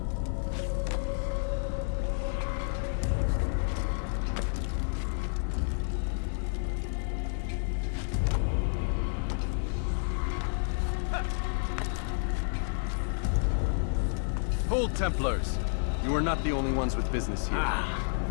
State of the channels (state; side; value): silent; right; digital silence